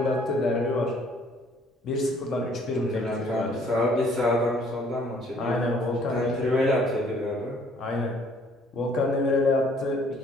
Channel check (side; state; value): both; normal; correlation 0.60